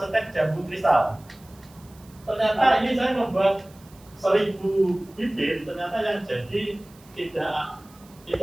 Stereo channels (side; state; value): right; noise; hiss, 26 dB below the sound